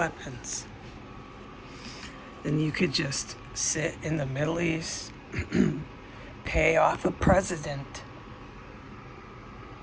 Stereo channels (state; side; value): identical; both; correlation 1.00